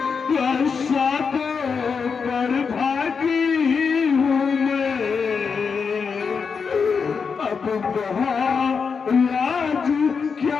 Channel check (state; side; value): quieter; right; 5.7 dB